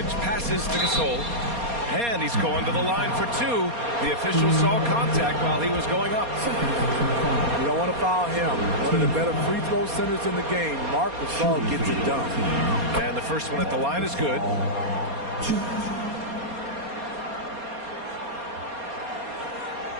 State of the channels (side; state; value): left; late; 4.2 ms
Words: passes to Gasol. And he's going to the line for 2. The official saw contact while he was going up. You don't want to foul him. One of the better free throw centers in the game. Marc Gasol gets it done. And the first one at the line is good.